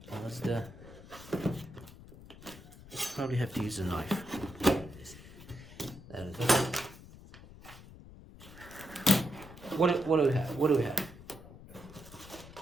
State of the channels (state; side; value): noise; left; rumble, 17 dB below the sound